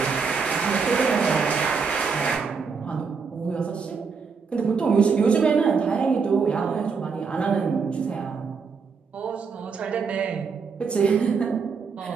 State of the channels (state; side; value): quieter; left; 5.4 dB